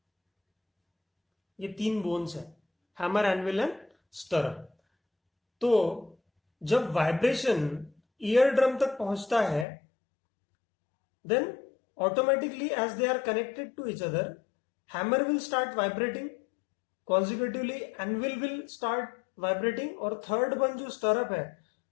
ये 3 बोन्स है, हैमर, एनविल एंड स्टरअप। तो जब वाइब्रेशन ईयर ड्रम तक पहुंचता है, then automatically as they are connected to each other, hammer will start vibrating, consecutively anvil will start vibrating, और थर्ड वन जो स्टरअप है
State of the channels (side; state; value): right; drops out; at 9.7 s